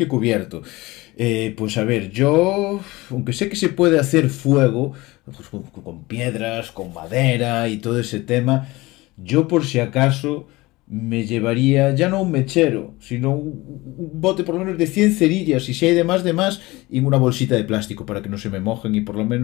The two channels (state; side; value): quieter; right; 20.9 dB